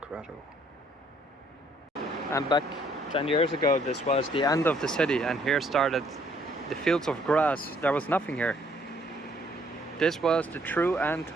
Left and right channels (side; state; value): both; normal; correlation 0.65